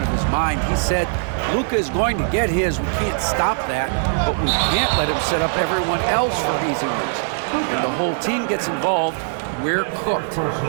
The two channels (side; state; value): left; silent; digital silence